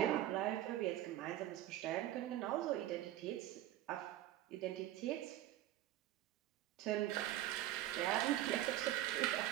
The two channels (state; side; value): quieter; left; 13.7 dB